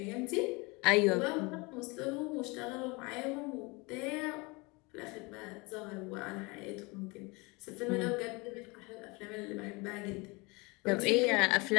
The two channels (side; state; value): right; quieter; 26.6 dB